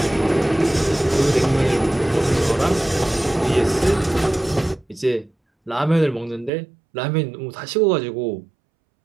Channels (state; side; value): drops out; left; at 6.5 s